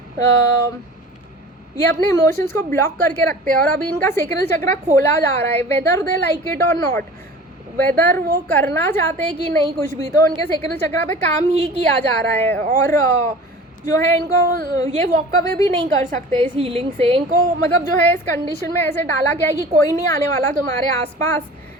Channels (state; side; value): normal; both; correlation 0.41